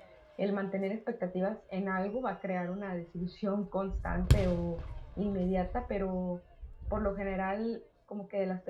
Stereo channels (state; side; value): identical; both; correlation 1.00